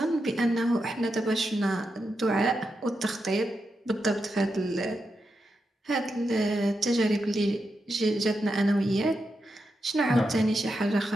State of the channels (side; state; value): both; normal; correlation 0.86